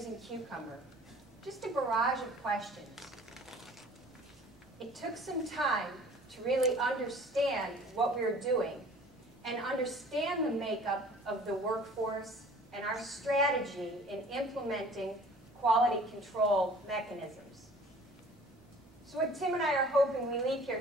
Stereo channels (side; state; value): both; normal; correlation 0.49